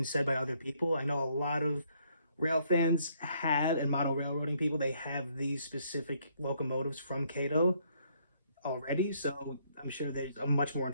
said by other people. I know a lot of rail fans have, and model railroading people, they have these specific locomotives from KATO already, so I'm sure there's a much more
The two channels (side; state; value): both; inverted; correlation -0.69